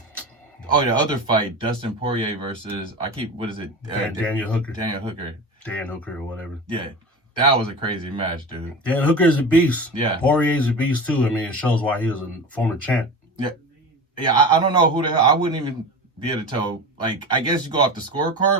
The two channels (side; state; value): both; normal; correlation 0.29